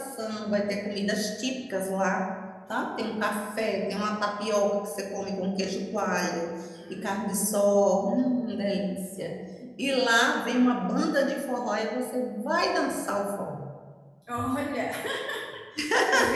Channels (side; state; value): both; identical; correlation 1.00